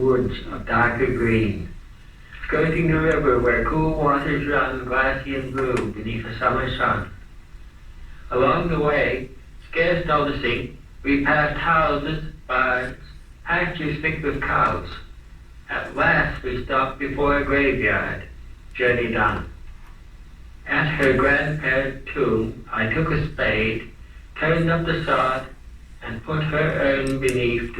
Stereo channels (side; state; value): both; identical; correlation 1.00